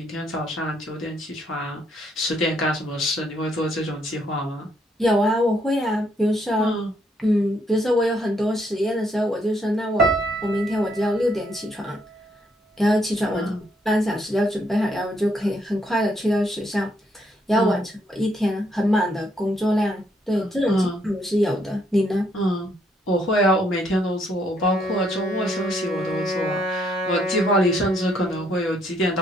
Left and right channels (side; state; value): both; normal; correlation 0.72